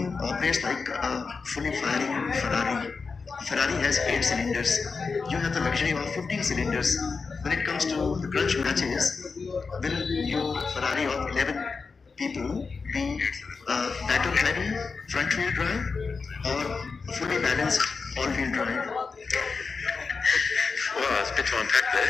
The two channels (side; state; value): right; quieter; 4.8 dB